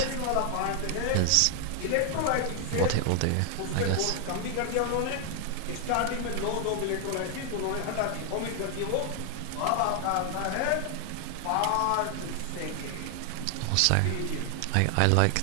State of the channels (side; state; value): both; different; correlation 0.00